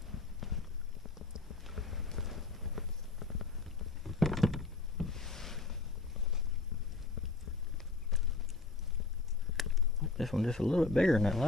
This one just a little bit bigger than that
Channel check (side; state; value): right; quieter; 3.6 dB